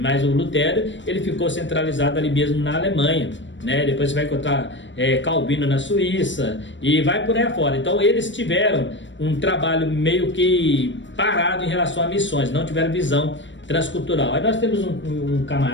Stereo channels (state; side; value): late; right; 0.54 ms